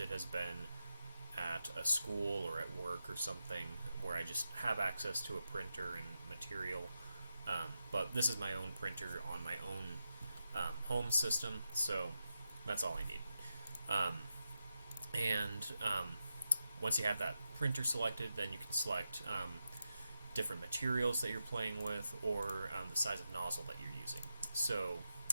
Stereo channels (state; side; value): inverted; both; correlation -0.88